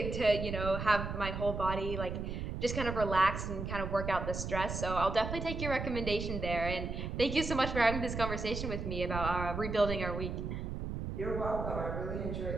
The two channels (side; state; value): right; noise; rumble, 4 dB below the sound